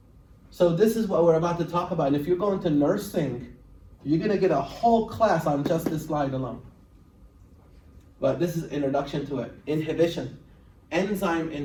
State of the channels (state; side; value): identical; both; correlation 1.00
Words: So this is what we're about to talk about. And if you're going to nursing, you're gonna get a whole class on just this slide alone. But this is introduction to it. Inhibition, enzyme